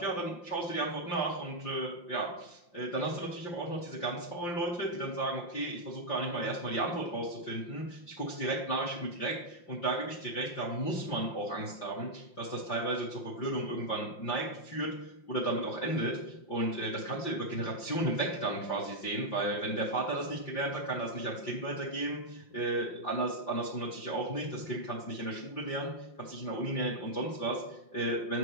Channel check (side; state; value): right; late; 5.7 ms